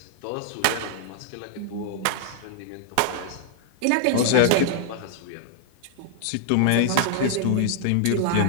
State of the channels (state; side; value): different; both; correlation -0.01